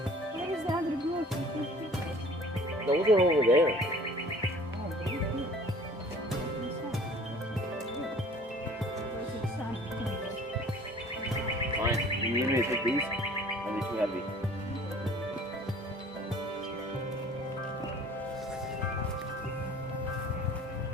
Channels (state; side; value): normal; both; correlation 0.49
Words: Where is the other group? Those are over there. Fine. You need me to take these? Are they too heavy?